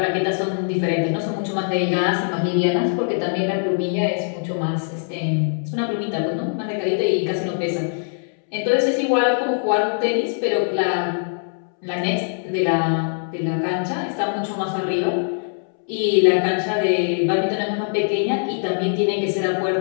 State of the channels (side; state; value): right; silent; 64 dB below the other